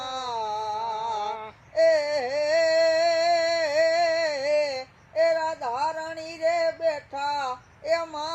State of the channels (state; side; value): identical; both; correlation 1.00